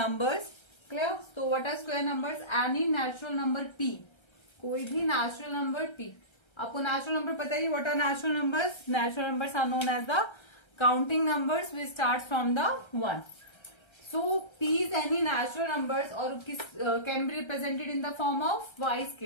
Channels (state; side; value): late; right; 1.3 ms